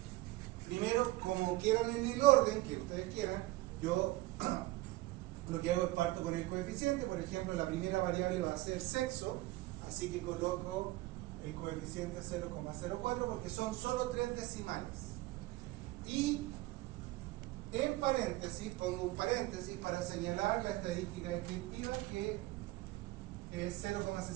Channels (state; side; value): quieter; left; 18.8 dB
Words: primero, como quieran en el orden que ustedes quieran, yo lo que hago es parto con el coeficiente. Por ejemplo, la primera variable va a ser sexo, así que coloco el coeficiente 0,04 porque son solo 3 decimales. Y en paréntesis, pongo un paréntesis para señalar la estadística descriptiva que es